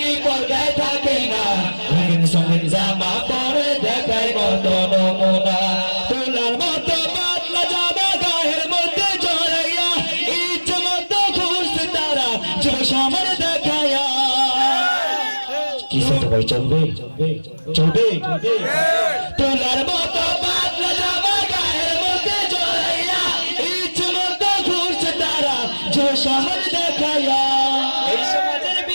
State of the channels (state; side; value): inverted; both; correlation -1.00